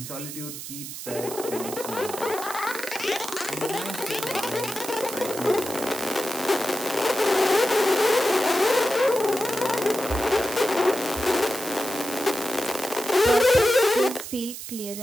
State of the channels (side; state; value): right; noise; hiss, 9 dB below the sound